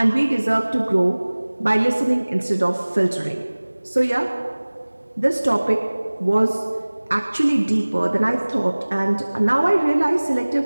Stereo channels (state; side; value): inverted; both; correlation -1.00